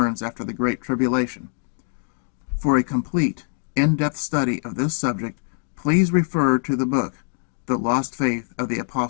after the Great Tribulation. For a complete, in-depth study of this subject, please refer to the book, The Lost Faith of the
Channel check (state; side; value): silent; right; 63 dB below the other